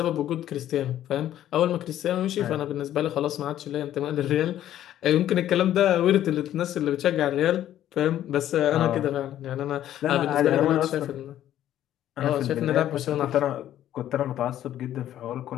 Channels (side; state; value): right; quieter; 12.0 dB